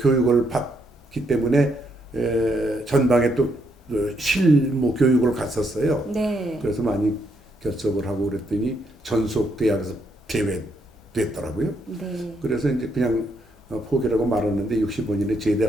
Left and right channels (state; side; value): normal; both; correlation 0.75